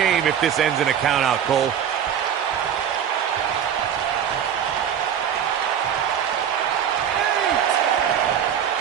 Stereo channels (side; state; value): left; quieter; 8.9 dB